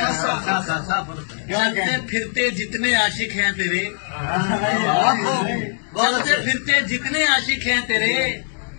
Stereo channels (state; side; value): silent; right; 65 dB below the other